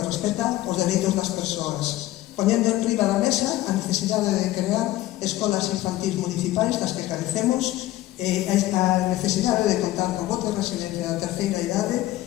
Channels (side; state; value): right; quieter; 15.7 dB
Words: respecta os dereitos das persoas, poñendo en riba da mesa a necesidade de crear escolas infantís municipais das que carecemos, a necesidade de contar con bote de residencia da terceira idade